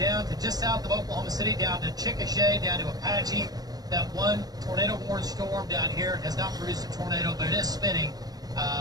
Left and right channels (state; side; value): late; left; 0.19 ms